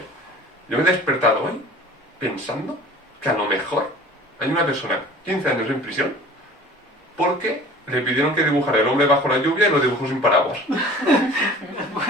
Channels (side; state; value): both; normal; correlation 0.45